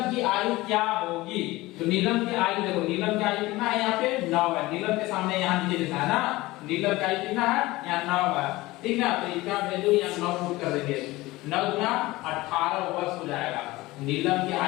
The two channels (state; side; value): quieter; right; 19.5 dB